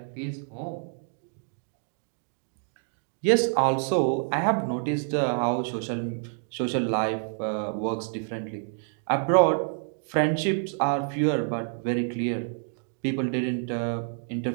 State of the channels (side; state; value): left; silent; 59 dB below the other